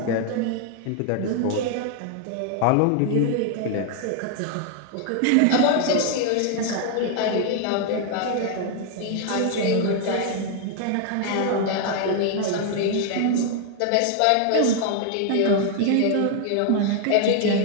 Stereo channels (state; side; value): different; both; correlation 0.00